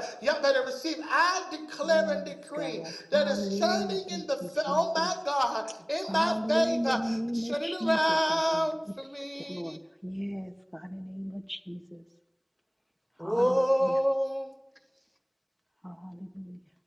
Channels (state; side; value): identical; both; correlation 1.00